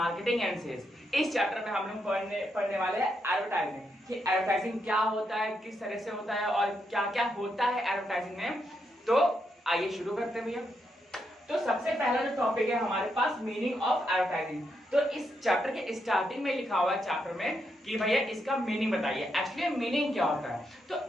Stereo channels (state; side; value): normal; both; correlation 0.81